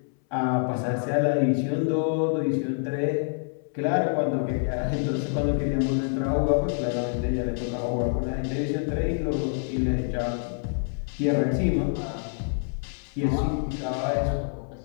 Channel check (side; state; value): right; silent; 60 dB below the other